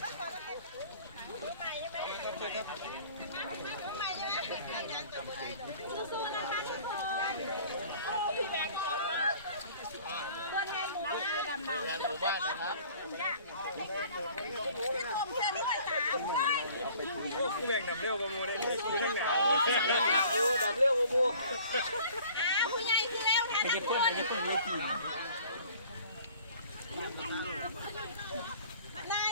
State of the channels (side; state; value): both; inverted; correlation -0.51